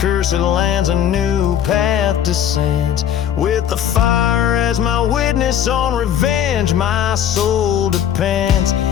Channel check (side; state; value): right; quieter; 9.7 dB